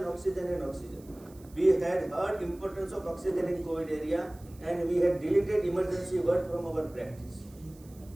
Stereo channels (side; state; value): right; noise; hiss, 26 dB below the sound